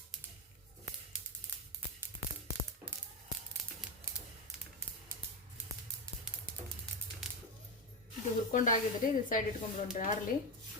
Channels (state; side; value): normal; both; correlation 0.13